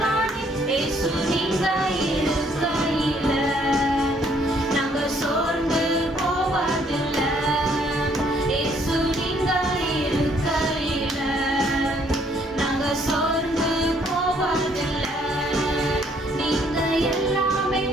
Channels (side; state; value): both; normal; correlation 0.66